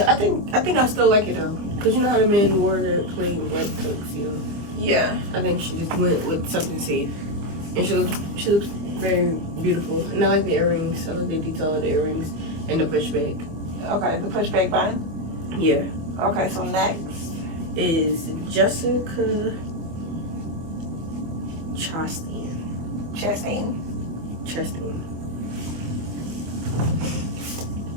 I think I still like it though, cause you know how the men wore the plain white tuxedo. Yeah. I think she just went with something safe, and she looks very beautiful. And I like the earrings. I like the detail of the earrings and the pushback. Okay, the pushback button. Yeah. Okay, so next is Jessica Chastain.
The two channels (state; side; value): late; left; 25 ms